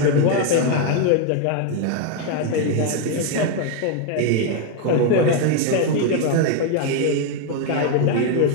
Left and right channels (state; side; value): different; both; correlation 0.01